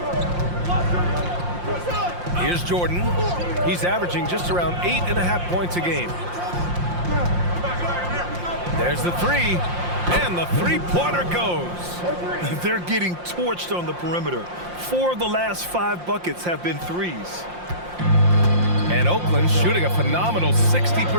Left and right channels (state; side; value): late; left; 5.7 ms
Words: Here's Jordan. He's averaging just around 8.5 points a game. There's the three. And the three-pointer goes. They're getting torched on the perimeter. 4 of the last 5 buckets have been threes. And Oakland shooting a phenomenal